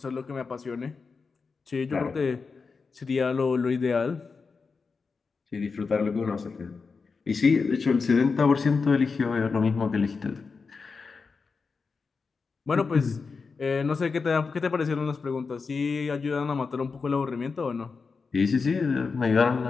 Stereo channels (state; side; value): quieter; right; 4.8 dB